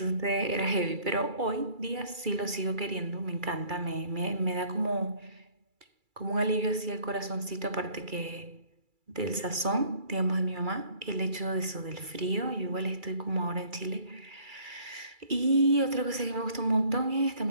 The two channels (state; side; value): late; left; 2.3 ms